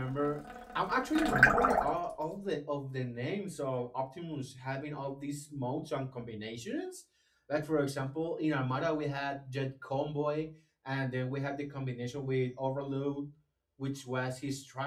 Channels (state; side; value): identical; both; correlation 1.00